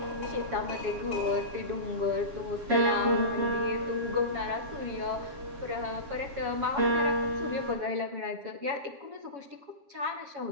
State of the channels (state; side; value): late; left; 7.2 ms